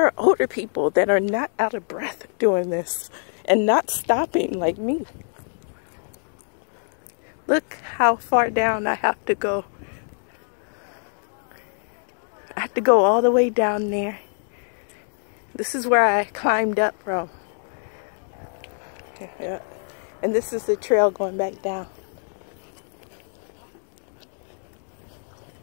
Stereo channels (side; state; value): right; silent; 62 dB below the other